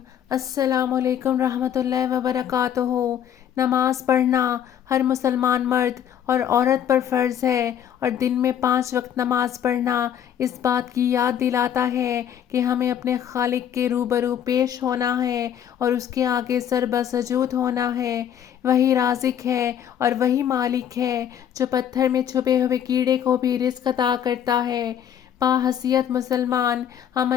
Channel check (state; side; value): quieter; right; 9.5 dB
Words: السلام علیکم رحمۃ اللہ وبرکاتہ۔ نماز پڑھنا ہر مسلمان مرد اور عورت پر فرض ہے، اور دن میں 5 وقت نماز پڑھنا اس بات کی یاد دلاتا ہے کہ ہمیں اپنے خالق کے روبرو پیش ہونا ہے اور اس کے آگے سر بسجود ہونا ہے۔ وہی رازق ہے اور وہی مالک ہے جو پتھر میں چھپے ہوئے کیڑے کو بھی رزق عطا کرتا ہے۔ باحیثیت مسلمان ہم